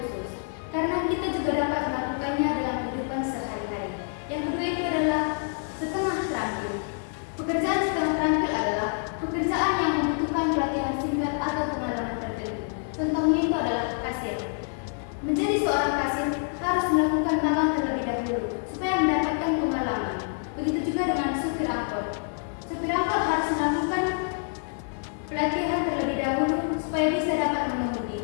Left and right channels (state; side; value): silent; right; 57 dB below the other